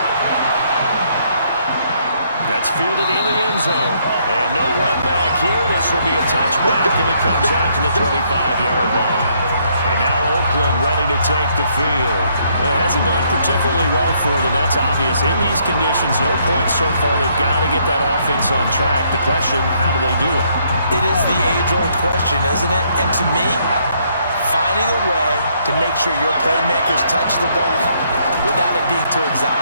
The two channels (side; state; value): both; inverted; correlation -0.70